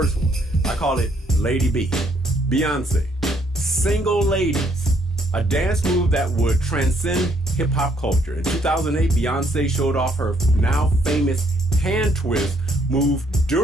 one. I call it Lady B. Beyonce. Single Ladies. A dance move that would transcend hip-hop culture. In 2008, Beyonce showed off her now famous hand twist move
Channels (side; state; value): both; normal; correlation 0.69